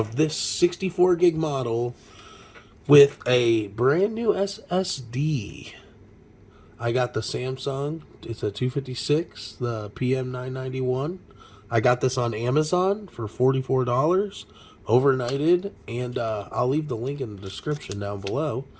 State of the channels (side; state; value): both; identical; correlation 1.00